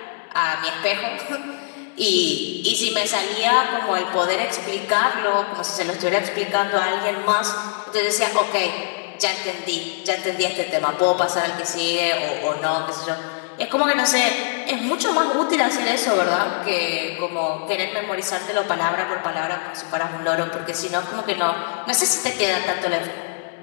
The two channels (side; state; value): right; silent; digital silence